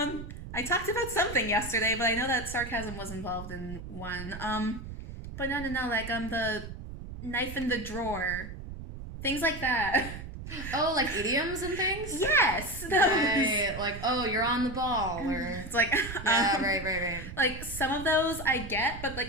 talked about something yesterday, but I know that sarcasm was involved in one. But no, like the knife in the drawer, things like that. Oh, like idioms and things? Yes. Right. Like, oh, you're on the ball, or it's like yeah, right. Like some of those I get, but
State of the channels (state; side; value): noise; right; rumble, 10 dB below the sound